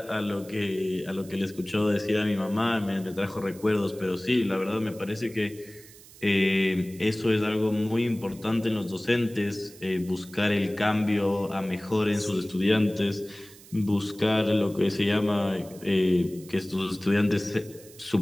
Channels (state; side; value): noise; right; hiss, 21 dB below the sound